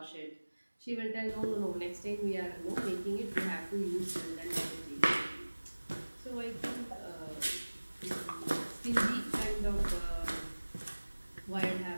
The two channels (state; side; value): inverted; both; correlation -1.00